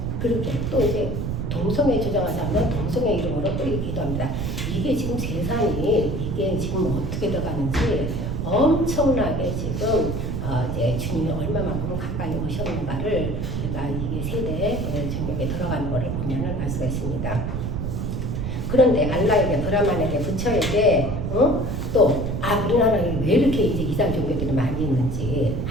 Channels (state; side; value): noise; right; rumble, 2 dB below the sound